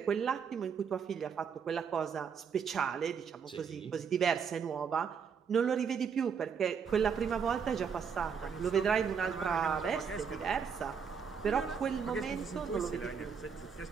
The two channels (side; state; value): left; quieter; 6.6 dB